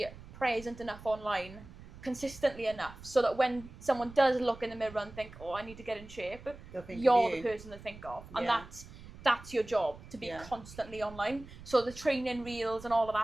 present enough online, consistently enough, so that when someone does look in the mirror and think, oh, I need to get in shape, you're the person to think of. And that's your job, to be constantly online. So the training reels and all of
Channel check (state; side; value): noise; right; rumble, 17 dB below the sound